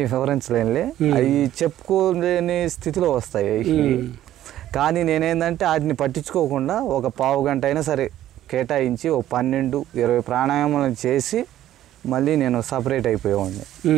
వివరించలేనులే, అవి చెప్పుకోలేని స్థితిలో వస్తాయి. కానీ నేనేందంటే వాటిని పట్టించుకోకుండా ఒక పావు గంట అయినా సరే కేటాయించి ఒక 12-20 ప్రాణాయామాలు చేసి మళ్ళీ నేను సపరేట్ అయిపోయేవాడిని.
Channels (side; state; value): left; quieter; 12.8 dB